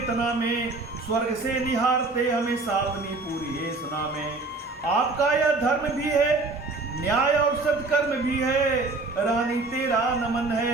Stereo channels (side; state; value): left; quieter; 3.5 dB